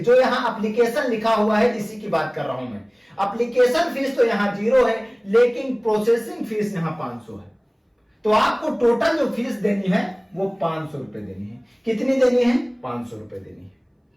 जो यहां एप्लीकेशन लिखा हुआ है इसी की बात कर रहा हूं मैं। एप्लीकेशन फीस तो यहां 0 है, लेकिन प्रोसेसिंग फीस यहां 500 है। तो आपको टोटल जो फीस देनी है वो 500 रुपए देनी है। कितनी देनी है, 500 रुपए देनी है।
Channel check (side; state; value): both; identical; correlation 1.00